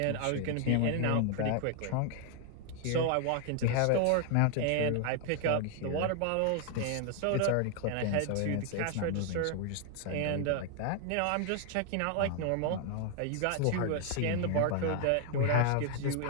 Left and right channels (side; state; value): both; different; correlation 0.00